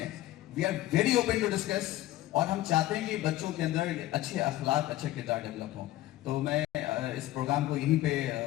we are very open to discuss. और हम चाहते हैं कि बच्चों के अंदर अच्छे अखलाक, अच्छे किरदार डेवलप हों। तो मैं इस प्रोग्राम को यहीं पे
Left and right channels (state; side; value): quieter; right; 15.7 dB